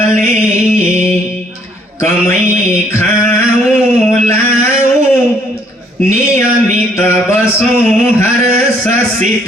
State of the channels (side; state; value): both; normal; correlation 0.65